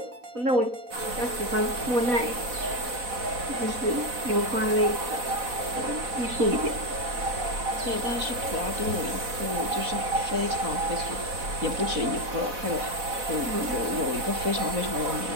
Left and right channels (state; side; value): late; left; 4.0 ms